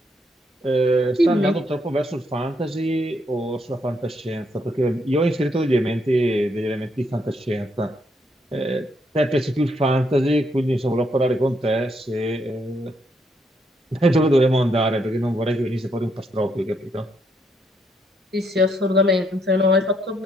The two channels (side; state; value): both; normal; correlation 0.75